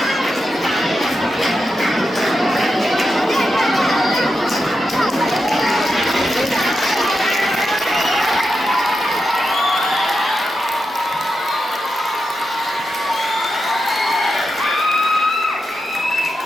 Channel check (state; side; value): normal; both; correlation 0.88